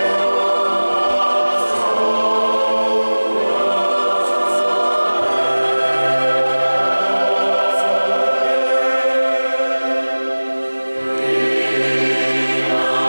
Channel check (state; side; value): inverted; both; correlation -1.00